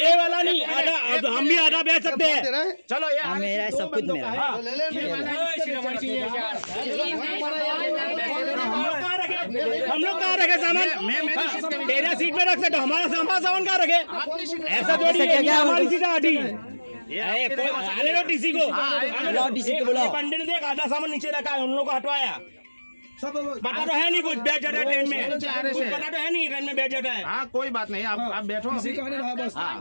वाला नहीं, आधा हम भी आधा बेच सकते हैं। चलो ये मेरा सब कुछ मेरा। हम लोग कहाँ रखे सामान? तेरा सीट पे रख सकते, हमारा सामान कहाँ रखे? ऐसा थोड़ी है, हमारी सीट आधी आने दो टीसी को। पंडित ने देख आधा सामान नीचे रखा है, उन लोगों को हटवाया। सब बता तो है नहीं कुछ, बैठ जाता है ट्रेन में, कुछ पता तो है नहीं ट्रेन में बैठ जाता है। हाँ कोई बात नहीं, आप बैठो, बस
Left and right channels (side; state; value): both; inverted; correlation -1.00